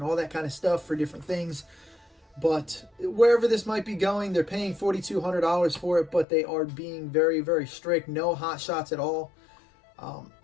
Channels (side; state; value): right; drops out; at 6.2 s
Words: all that kind of stuff for different things. But wherever this might be going, they're paying $4,200 for it, but they are being very, very strict. No hot shots at all.